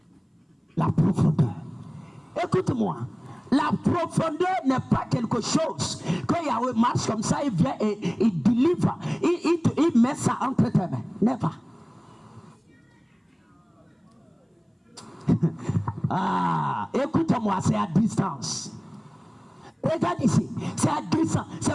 La profondeur. Écoute-moi. La profondeur n'est pas quelque chose que Yahweh marche comme ça, il vient et il délivre. Il met ça entre tes mains. Never. Écoute-moi, c'est à distance. Regarde ici, c'est à distance.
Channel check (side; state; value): both; identical; correlation 1.00